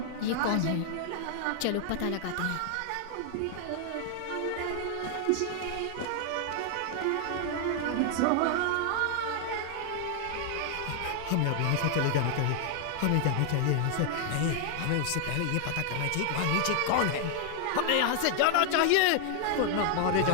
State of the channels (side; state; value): both; different; correlation 0.00